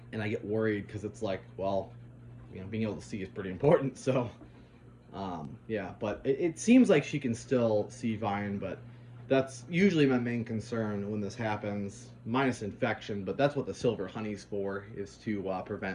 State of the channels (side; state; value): both; identical; correlation 1.00